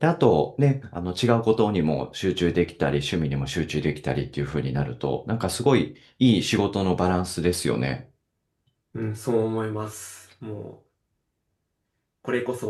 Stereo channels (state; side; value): identical; both; correlation 1.00